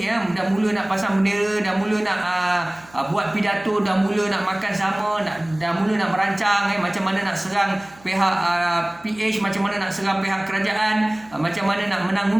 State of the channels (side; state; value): right; noise; hum, 25 dB below the sound